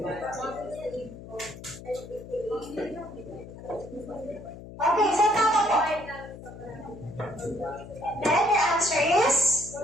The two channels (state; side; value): noise; left; hum, 14 dB below the sound